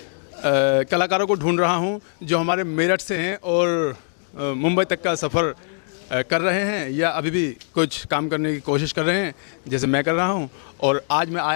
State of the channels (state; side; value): silent; right; 64 dB below the other